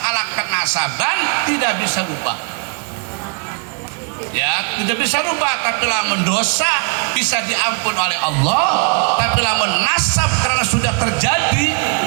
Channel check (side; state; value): left; quieter; 34.7 dB